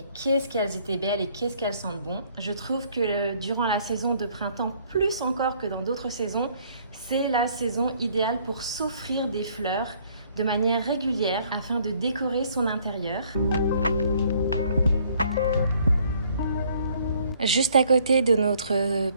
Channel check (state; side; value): inverted; both; correlation -0.62